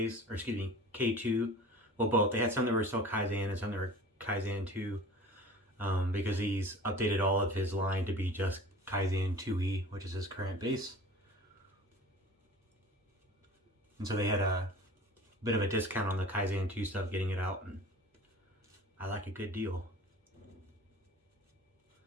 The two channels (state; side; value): normal; both; correlation 0.42